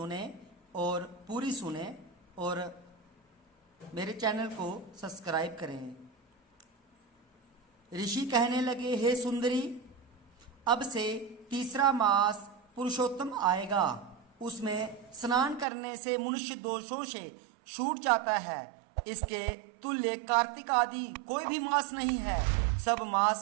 और पूरी सुने और मेरे चैनल को सब्सक्राइब करें। ऋषि कहने लगे, हे सुंदरी, अब से तीसरा मास पुरुषोत्तम आएगा। उसमें स्नान करने से मनुष्य दोषों से छूट जाता है। इसके तुल्य कार्तिक आदि कोई भी मास नहीं है। सब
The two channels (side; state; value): left; drops out; at 15.7 s